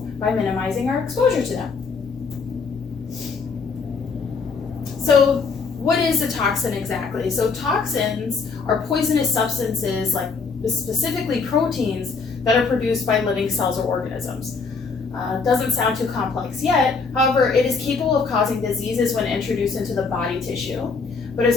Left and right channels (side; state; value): right; quieter; 4.8 dB